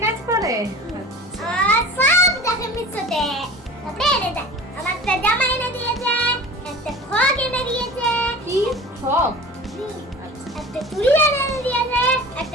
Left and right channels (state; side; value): normal; both; correlation 0.38